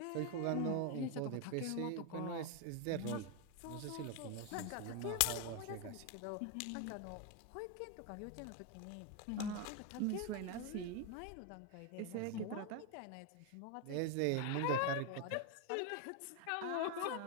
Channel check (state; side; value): different; both; correlation 0.01